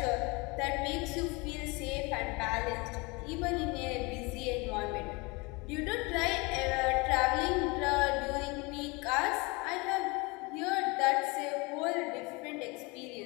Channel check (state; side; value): quieter; right; 26.7 dB